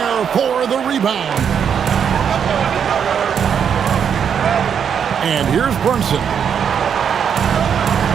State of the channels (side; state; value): left; quieter; 7.7 dB